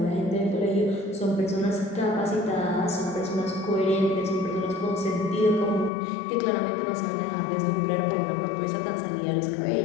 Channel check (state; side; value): drops out; right; at 5.9 s